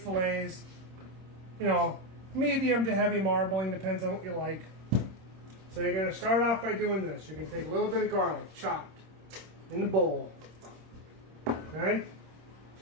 You know, medium to heavy marbling, depends on what you like. So you're going to start off by doing this. You're going to take a little bit of garlic, chopped, in the bowl. Okay?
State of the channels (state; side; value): late; left; 26 ms